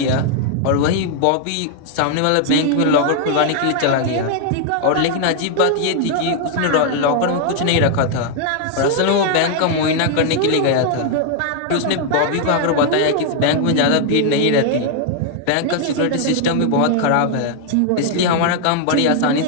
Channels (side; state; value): both; different; correlation 0.00